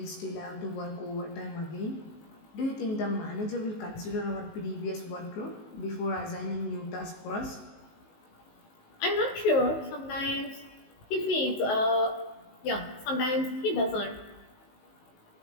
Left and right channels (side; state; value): right; late; 19 ms